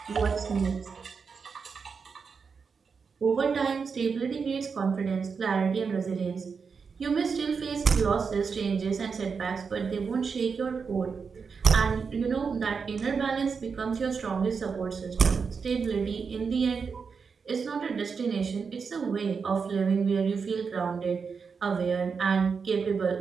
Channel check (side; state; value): left; quieter; 5.6 dB